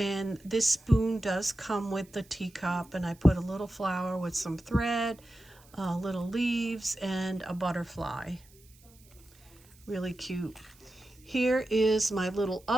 this spoon does come with the teacup, and I put a little flower with some thread, little leaves, and a butterfly. Really cute. Here is my little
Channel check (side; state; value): right; noise; hiss, 27 dB below the sound